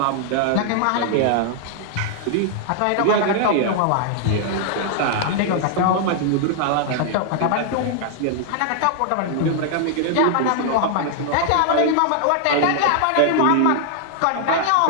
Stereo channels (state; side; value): different; both; correlation -0.01